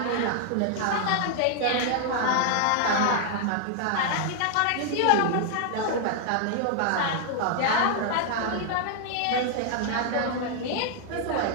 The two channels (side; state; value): both; different; correlation 0.00